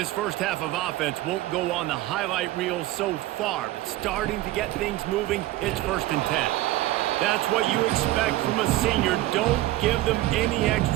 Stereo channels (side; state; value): left; quieter; 16.3 dB